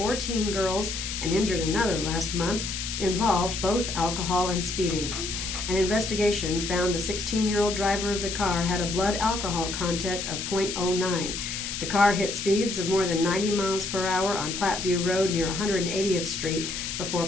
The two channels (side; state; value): left; noise; hiss, 5 dB below the sound